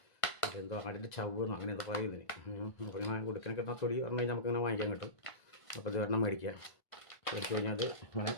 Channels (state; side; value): late; right; 1.5 ms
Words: അതെന്തോ ആടിൻ്റെ ചവ്വെന്നോ അങ്ങനെ എന്തോ പറയും ഇതിന്. അപ്പോൾ ഇങ്ങനെ ഉടുക്കിനെ കിട്ടുന്ന തൊലി പറഞ്ഞു കഴിഞ്ഞാൽ നമുക്കിങ്ങനെ വാങ്ങിക്കാൻ കിട്ടും. അപ്പോൾ ഇത് ഒരെണ്ണം മേടിക്കുക. മേടിച്ച് കഴിഞ്ഞാൽ അത് ഇങ്ങനെ